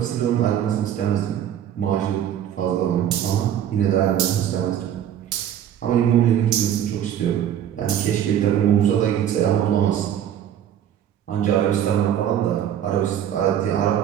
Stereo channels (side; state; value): left; quieter; 10.2 dB